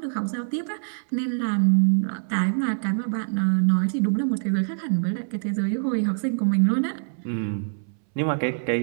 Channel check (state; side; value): silent; left; 62 dB below the other